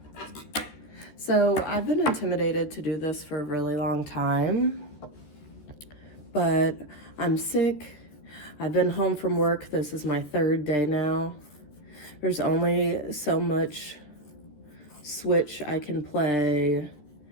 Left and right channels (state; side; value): late; right; 13 ms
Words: So I've been intimidated to do this for a really long time, but I'm sick. I've been home from work. This is my third day now. There's only so much Switch I can play,